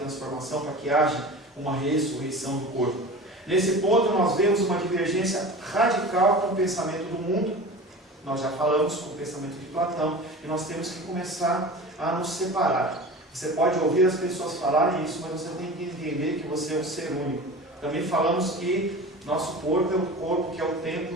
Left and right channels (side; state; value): both; normal; correlation 0.35